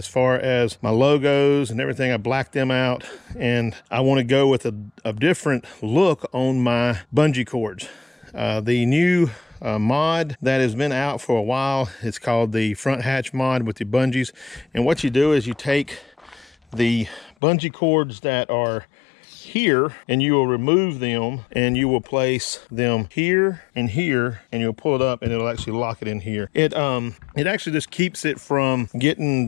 far as my logos and everything. I black them out, and I want to go with a different look on my bungee cords. The new mod that has been out for a while, it's called the front hatch mod with the bungees. And what you do is you take the bungee cords that are here, and you will remove them, and you will place them here and here, and you'll pull it up, and it'll actually lock it in here. It actually just keeps it from getting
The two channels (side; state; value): right; drops out; at 17.4 s